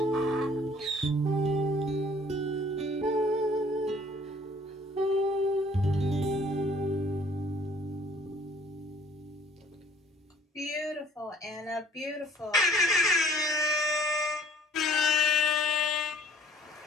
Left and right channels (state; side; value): normal; both; correlation 0.56